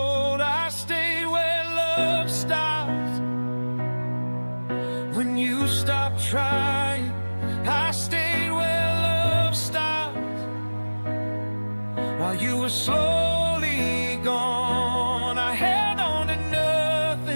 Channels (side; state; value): both; inverted; correlation -1.00